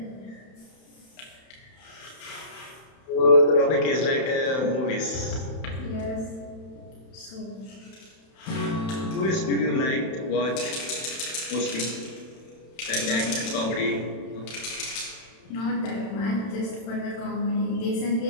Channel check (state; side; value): late; right; 31 ms